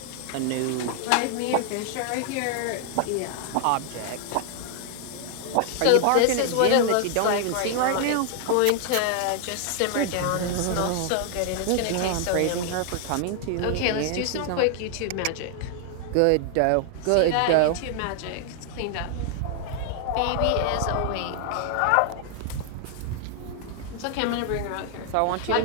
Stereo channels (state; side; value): different; both; correlation 0.00